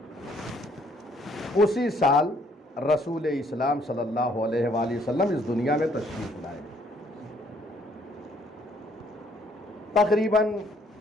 اسی سال رسول اسلام صلی اللہ علیہ وآلہ وسلم اس دنیا میں تشریف لائے۔ تقریباً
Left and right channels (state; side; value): normal; both; correlation 0.65